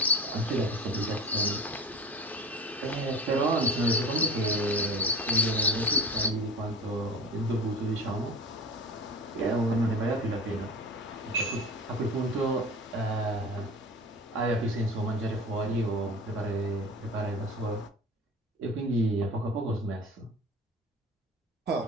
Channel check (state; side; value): normal; both; correlation 0.35